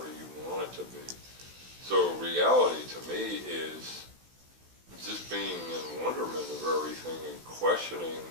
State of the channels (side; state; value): left; late; 16 ms